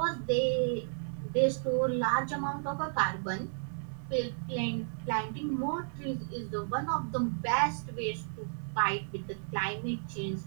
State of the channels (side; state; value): left; silent; digital silence